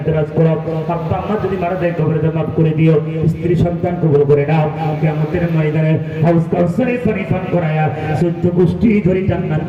দরাজ করো। আব্বা আম্মা যদি মারা যায় কবরে মাফ করে দিও, স্ত্রী সন্তান কবুল করে নাও, কিয়ামতের ময়দানে হাউস কাউসারে পানি পান করায়া 14 গোষ্ঠী ধরে জান্নাত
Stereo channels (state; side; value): identical; both; correlation 1.00